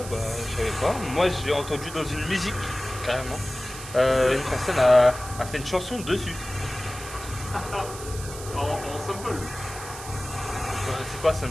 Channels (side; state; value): right; noise; hiss, 12 dB below the sound